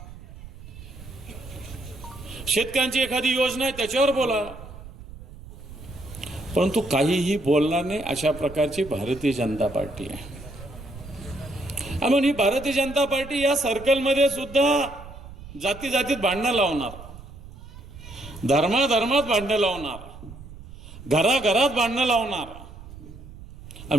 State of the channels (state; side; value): noise; right; rumble, 15 dB below the sound